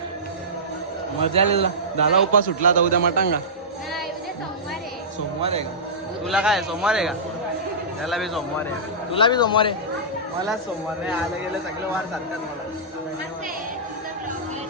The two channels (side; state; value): both; normal; correlation -0.17